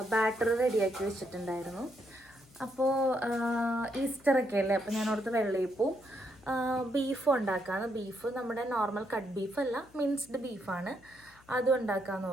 ബാറ്റർ റെഡിയാക്കി വെച്ചിട്ടുണ്ടായിരുന്നു. അപ്പോൾ ഈസ്റ്ററൊക്കെ അല്ലേ, അപ്പോൾ ഞാൻ ഓർത്ത് വെള്ളയപ്പവും ബീഫും ഉണ്ടാക്കാമെന്ന്. ബീഫ് നമ്മുടെ നോർമൽ കട്ട് ബീഫല്ല, മിൻസ്ഡ് ബീഫാണ്. അതും ഉണ്ടാക്കാമെന്ന്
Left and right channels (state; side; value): noise; left; hum, 27 dB below the sound